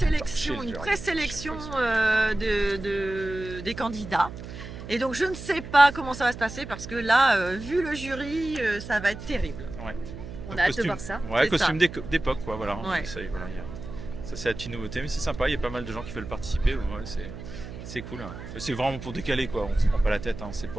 une présélection des candidats. Et donc je ne sais pas comment ça va se passer parce que là, vu le jury, ça va être terrible. On a hâte de voir ça. Ouais, C'est costume d'époque, quoi, voilà. Ouais. Ça, voilà, ça c'est la petite nouveauté, mais c'est sympa, il y a pas mal de gens qui veulent participer, ouais, c'est cool. Hein. C'est vraiment pour décaler, quoi, on se prend pas la tête, hein. C'est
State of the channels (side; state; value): right; noise; hum, 11 dB below the sound